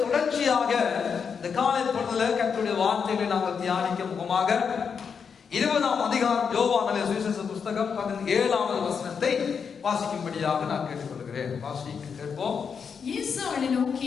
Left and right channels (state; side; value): quieter; right; 6.4 dB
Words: தொடர்ச்சியாக இந்த காலை பொழுதுல கர்த்தருடைய வார்த்தைகளை நாங்கள் தியானிக்க முகமாக 20ஆம் அதிகாரம் யோவான் சுவிசேஷ புஸ்தகம் 17வது வசனத்தை வாசிக்கும்படியாக நான் கேட்டுக்கொள்கிறேன். வாசிக்க கேட்போம். இயேசு அவளை